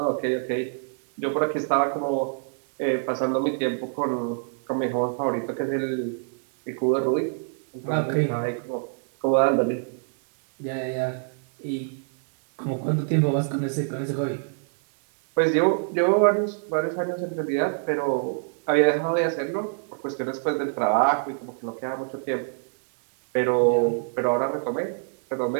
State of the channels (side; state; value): left; silent; digital silence